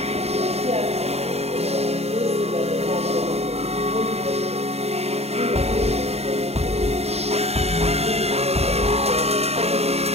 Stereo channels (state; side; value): late; left; 0.30 ms